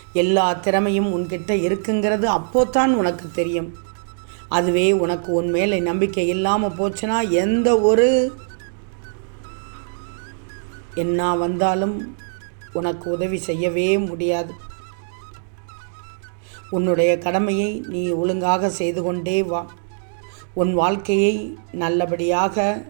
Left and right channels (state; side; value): silent; left; digital silence